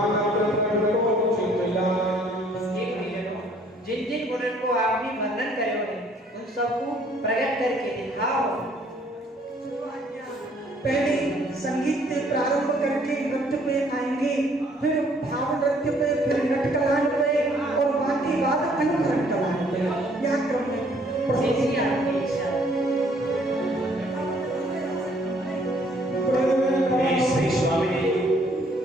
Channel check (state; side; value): normal; both; correlation 0.62